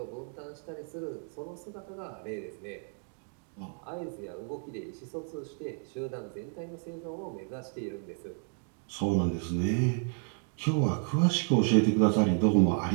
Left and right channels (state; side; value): quieter; left; 39.2 dB